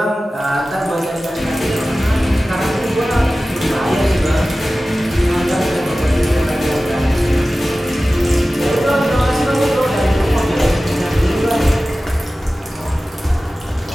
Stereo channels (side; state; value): both; normal; correlation 0.96